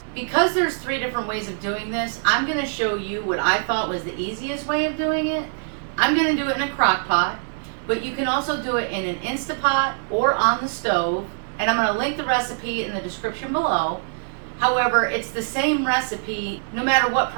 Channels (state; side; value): silent; left; digital silence